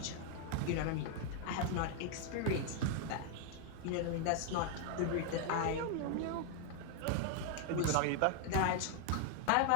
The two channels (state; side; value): different; both; correlation 0.00